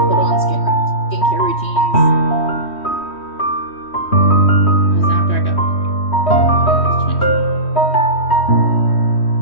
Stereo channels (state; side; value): late; right; 3.1 ms